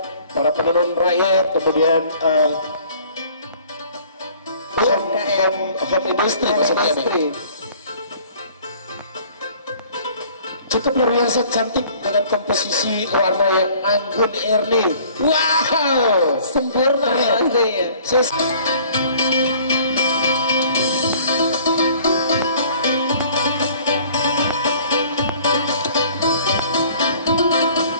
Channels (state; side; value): inverted; both; correlation -0.53